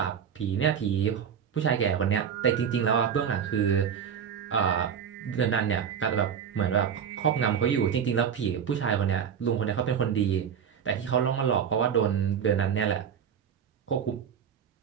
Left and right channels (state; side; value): quieter; left; 7.8 dB